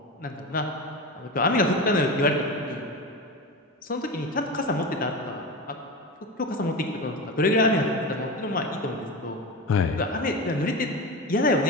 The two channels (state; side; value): normal; both; correlation 0.24